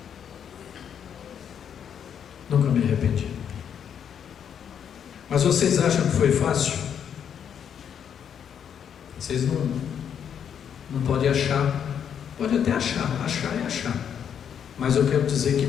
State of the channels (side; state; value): right; quieter; 8.3 dB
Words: Nunca me arrependi. Mas vocês acham que foi fácil? Vocês não podem achar. Pode até achar é achar. Mas eu quero dizer que